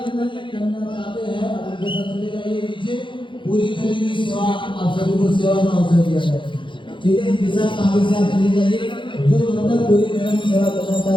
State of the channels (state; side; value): late; right; 0.24 ms